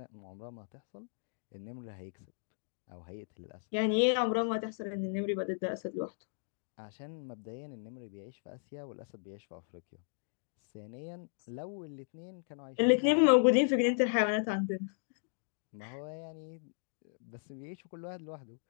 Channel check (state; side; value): silent; right; digital silence